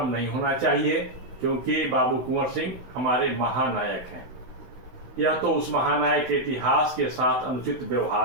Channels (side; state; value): left; late; 16 ms